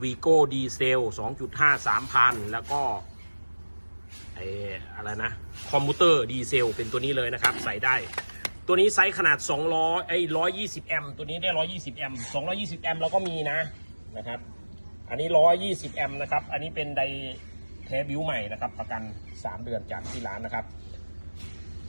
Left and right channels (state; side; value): inverted; both; correlation -1.00